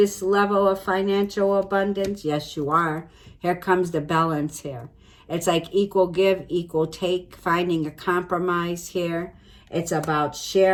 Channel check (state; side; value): identical; both; correlation 1.00